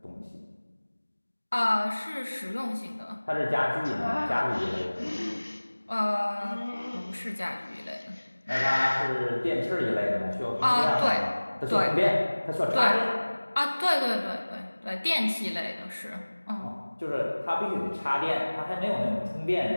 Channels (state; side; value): inverted; both; correlation -1.00